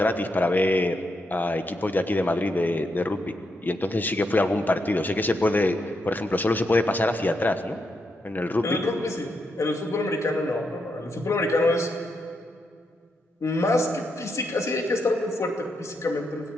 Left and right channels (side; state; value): both; normal; correlation 0.81